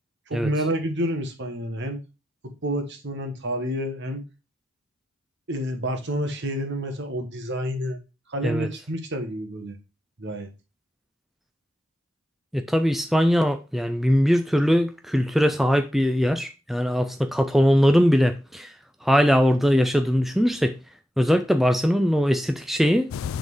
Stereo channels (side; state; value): both; normal; correlation 0.89